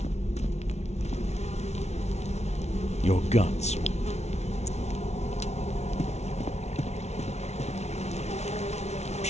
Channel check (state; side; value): late; right; 0.32 ms